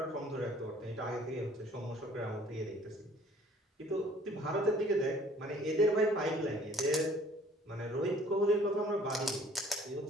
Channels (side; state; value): both; normal; correlation 0.55